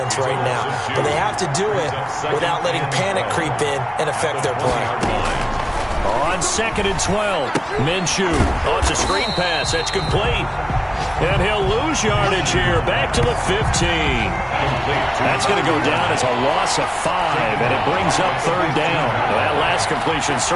right now. But they have to do it without letting panic creep in and affect their play. On 2nd and 12, Minshew. Oh, it's a screen pass. That's complete. And he'll lose yardage here. Back to the 15. That's going to go down as a loss of 5, and it brings up 3rd down. Well, that last completion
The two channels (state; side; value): identical; both; correlation 1.00